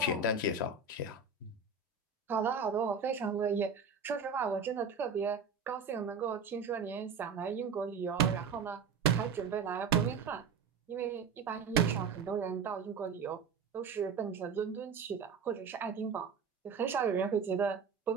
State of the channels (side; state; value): left; quieter; 5.3 dB